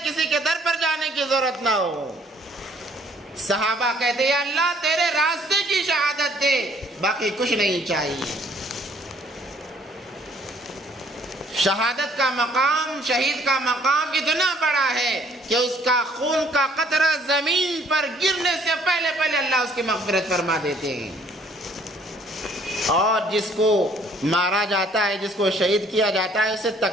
کسی کے در پر جانے کی ضرورت نہ ہو۔ صحابہ کہتے ہیں یا اللہ تیرے راستے کی شہادت دے، باقی کچھ نہیں چاہیے۔ شہادت کا مقام، شہید کا مقام اتنا بڑا ہے کہ اس کا خون کا قطرہ زمین پر گرنے سے پہلے پہلے اللہ اس کی مغفرت فرما دیتے ہیں۔ اور جس کو مارا جاتا ہے، جس کو شہید کیا جاتا ہے، اسے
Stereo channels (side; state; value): both; normal; correlation 0.61